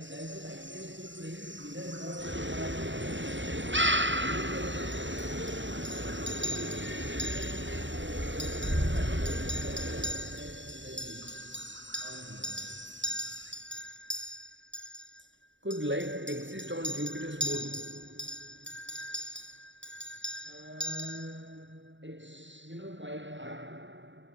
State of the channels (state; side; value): late; left; 0.54 ms